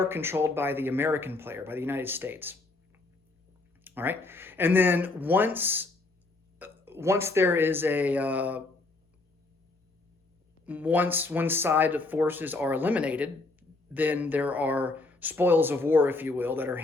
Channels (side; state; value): right; quieter; 3.3 dB